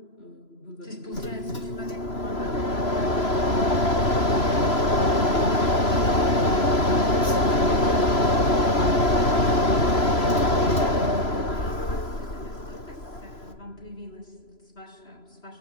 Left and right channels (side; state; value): right; late; 3.0 ms